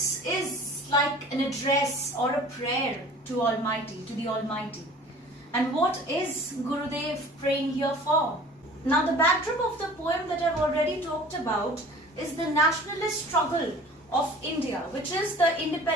is like an address or a prayer to the Almighty. And what is Gurudev praying here for? Now, the backdrop of the poem that I've already talked about is the nationalist struggle of India, which is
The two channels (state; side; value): normal; both; correlation 0.45